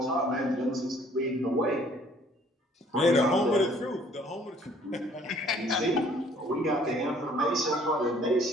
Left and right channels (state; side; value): normal; both; correlation 0.58